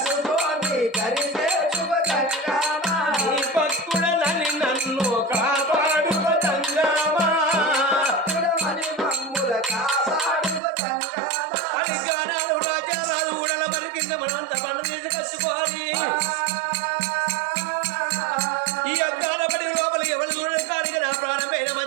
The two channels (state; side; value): drops out; left; at 10.6 s